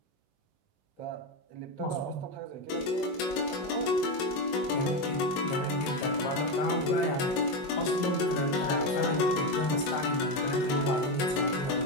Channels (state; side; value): late; right; 22 ms